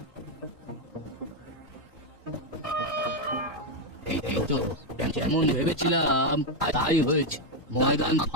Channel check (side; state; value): both; normal; correlation 0.03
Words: এই তো যেমন ভেবেছিলাম তাই হয়েছে। ময়দান